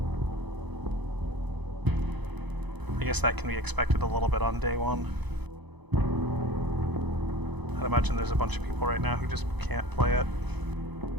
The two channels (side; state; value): left; late; 1.0 ms